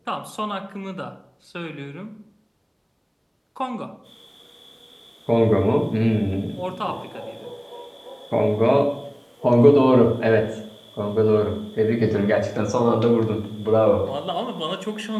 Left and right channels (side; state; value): both; identical; correlation 1.00